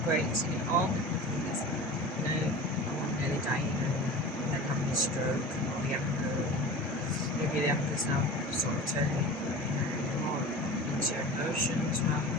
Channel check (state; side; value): normal; both; correlation 0.35